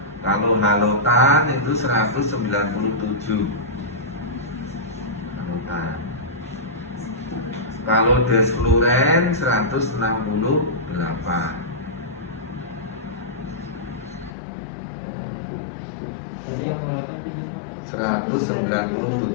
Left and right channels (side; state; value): right; drops out; at 14.3 s